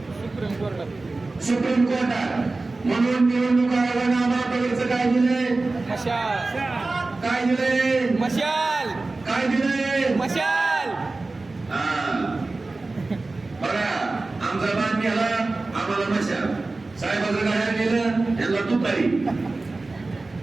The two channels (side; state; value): left; quieter; 3.4 dB